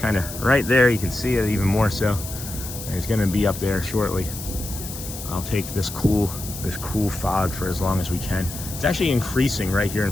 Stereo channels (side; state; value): left; noise; hiss, 10 dB below the sound